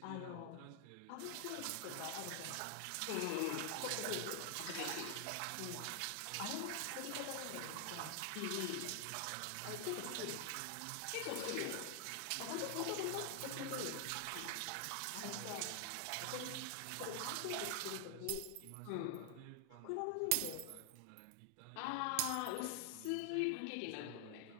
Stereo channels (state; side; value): different; both; correlation 0.00